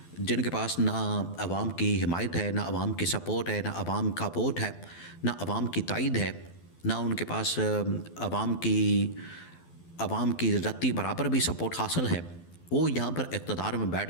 جن کے پاس نہ عوام کی حمایت ہے، نہ عوام کی سپورٹ ہے، نہ عوام کا ووٹ ہے، نہ عوام کی تائید ہے، نہ ان کے پاس عوام کی رتی برابر بھی سپورٹ حاصل ہے، وہ یہاں پر اقتدار میں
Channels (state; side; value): late; right; 12 ms